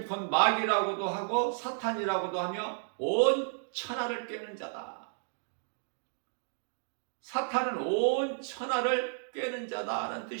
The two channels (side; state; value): left; silent; digital silence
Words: 곧 마귀라고도 하고 사탄이라고도 하며 온 천하를 꿰는 자다. 사탄은 온 천하를 꿰는 자다라는